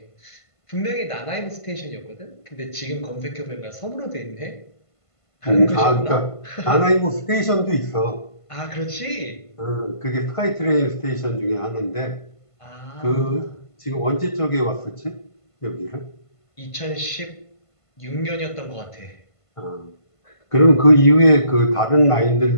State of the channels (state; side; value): late; right; 1.5 ms